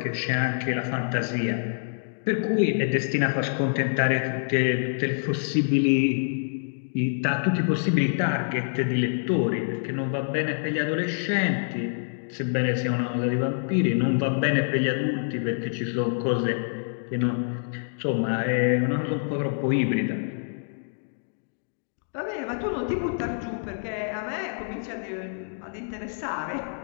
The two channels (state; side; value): silent; right; digital silence